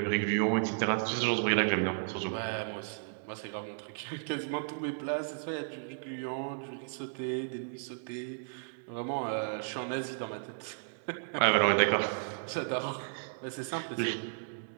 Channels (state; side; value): silent; left; 55 dB below the other